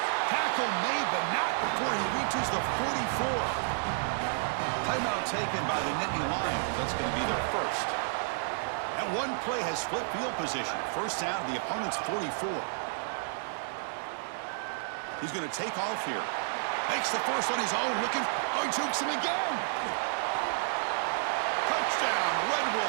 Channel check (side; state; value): left; silent; 57 dB below the other